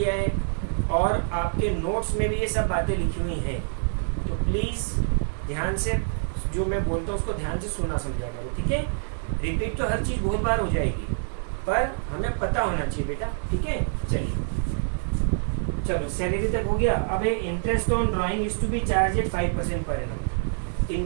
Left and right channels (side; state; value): left; silent; 61 dB below the other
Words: है और आपके नोट्स में भी ये सब बातें लिखी हुई हैं। तो प्लीज ध्यान से जो मैं बोलता हूँ उसको ध्यान से सुना समझा करो, ठीक है। रिपीट तो हर चीज़ बहुत बार हो जाएगी, पर हमें पता होना चाहिए बेटा, ठीक है। चलिए चलो सैलरी तक हो गया। अब interest on drawing is to be charge at 5% per annum.